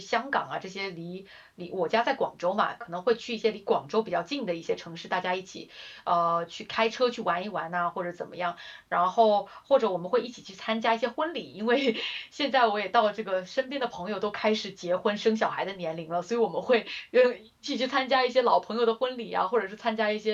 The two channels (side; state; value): both; identical; correlation 1.00